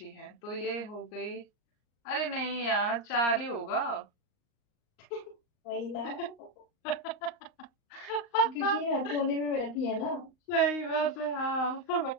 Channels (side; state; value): right; late; 38 ms